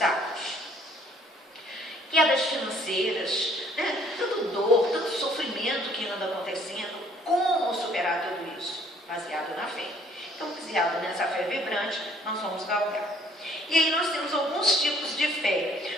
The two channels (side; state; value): both; normal; correlation 0.60